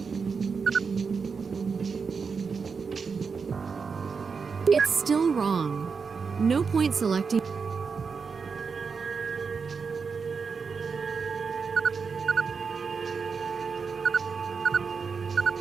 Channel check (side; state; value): left; quieter; 5.4 dB